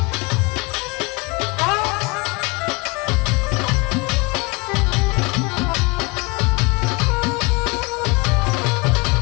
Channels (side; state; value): right; quieter; 26.6 dB